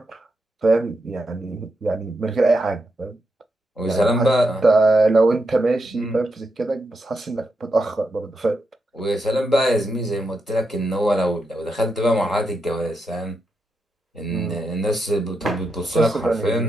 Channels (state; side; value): normal; both; correlation 0.84